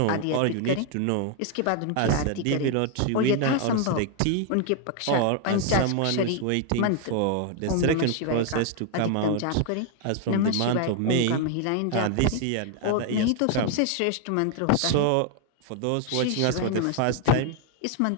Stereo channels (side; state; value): both; different; correlation 0.00